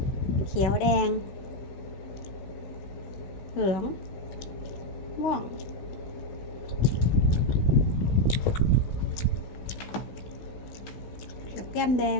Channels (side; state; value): right; late; 16 ms